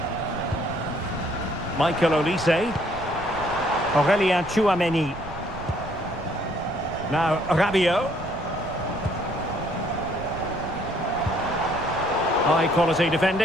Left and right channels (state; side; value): noise; right; rumble, 14 dB below the sound